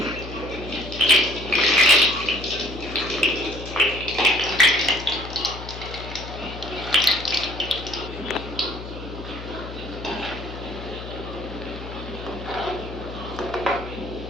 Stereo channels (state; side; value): noise; left; hum, 11 dB below the sound